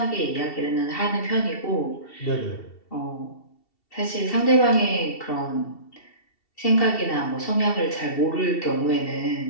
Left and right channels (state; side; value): late; right; 2.7 ms